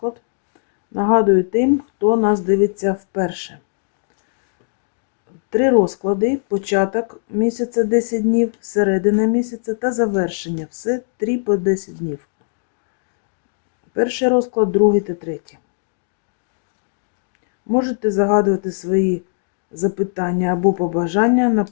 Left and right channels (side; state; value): right; silent; digital silence